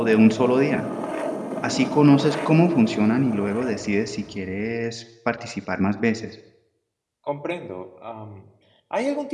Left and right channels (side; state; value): both; identical; correlation 1.00